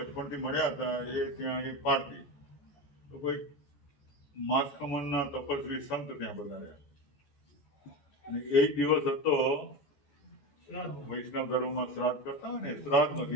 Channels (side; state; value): right; late; 14 ms